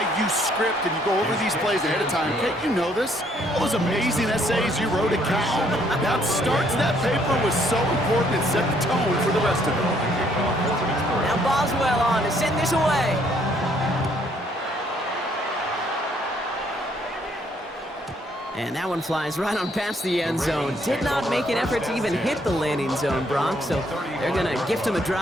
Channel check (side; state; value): both; normal; correlation 0.67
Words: you script and you go over these plays ahead of time. Can't you know this? All those amazing essays you wrote at Cal. That start to that paper was so important. It set the tone for the rest of it. Now Boswell on to send this away. And that one flies right on past the end zone. Did not make an effort to even hit the landing zone, Brock, so they're going to gift him a